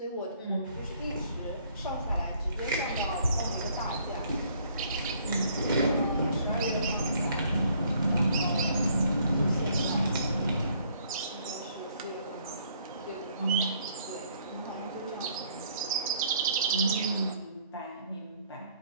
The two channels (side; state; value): both; inverted; correlation -0.63